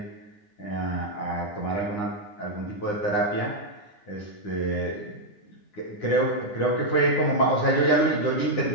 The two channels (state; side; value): late; right; 9.7 ms